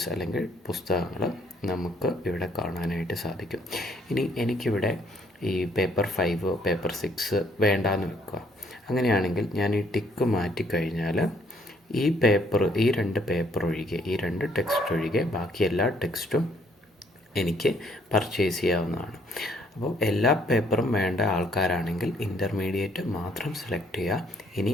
അല്ലെങ്കിൽ പുസ്തകങ്ങൾ നമുക്ക് ഇവിടെ കാണാനായിട്ട് സാധിക്കും. ഇനി എനിക്കിവിടെ ഈ പേപ്പർ 5 പേപ്പർ 6 വേണ്ടാന്ന് വെക്കുക. അങ്ങനെയാണെങ്കിൽ ഞാൻ ഈ ടിക്ക് മാറ്റിക്കഴിഞ്ഞാൽ ഈ രണ്ട് പേപ്പർ ഒഴികെ, ഈ 2 ടെക്സ്റ്റ് ഒഴികെ ബാക്കി എല്ലാ ടെക്സ്റ്റും എനിക്ക് പർച്ചേസ് ചെയ്യാവുന്നതാണ്. അപ്പോൾ എല്ലാ പേപ്പറും വേണ്ട ആൾക്കാരാണെങ്കിൽ ഇൻ്റർമീഡിയറ്റ് മാത്രം സെലക്ട് ചെയ്യുക. ഇനി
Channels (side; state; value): both; normal; correlation 0.66